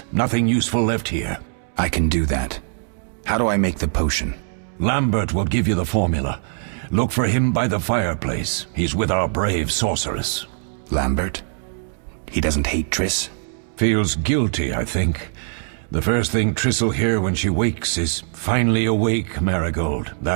Nothing useful left here. I can do that. How do I make the potion? Lambert will give you the formula. Look for him by the fireplace. He's with our brave sorceress. Lambert? He doesn't hate Triss? Feels guilty, I think. The first thing Triss'll hear when she wakes is, "Finally awake, Marigold."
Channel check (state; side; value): silent; left; 64 dB below the other